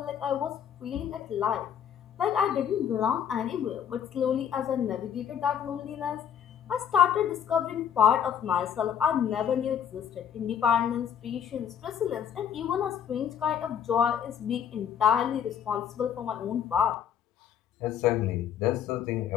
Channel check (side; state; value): right; quieter; 8.7 dB